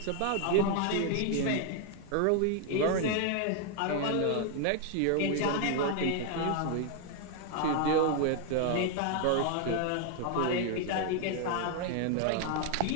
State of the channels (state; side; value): different; both; correlation 0.00